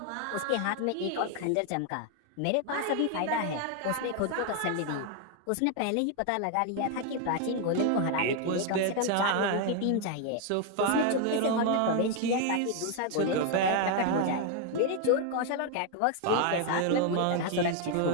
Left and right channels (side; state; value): both; different; correlation 0.00